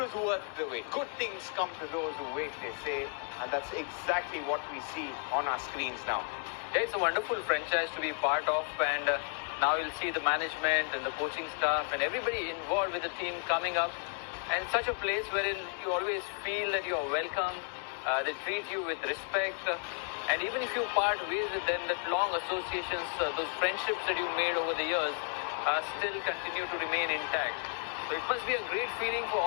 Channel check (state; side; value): silent; right; 56 dB below the other